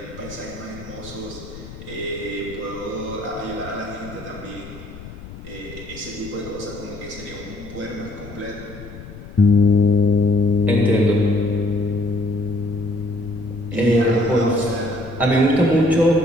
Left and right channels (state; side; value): noise; left; rumble, 15 dB below the sound